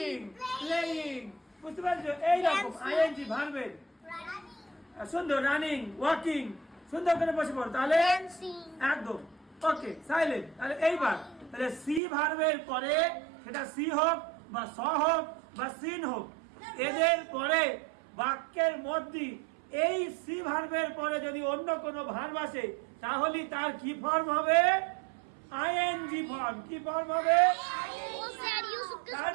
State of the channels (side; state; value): left; drops out; at 12.0 s